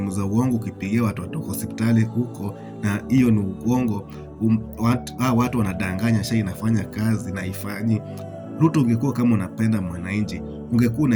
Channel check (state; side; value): identical; both; correlation 1.00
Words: za uongo ukipigia watu wa hospitali huko, na hiyo ni uongo. Watu wanadanganya SHA inafanya kazi na haifanyi. Ruto, ungekuwa kama unapenda mwananchi, ungekuwa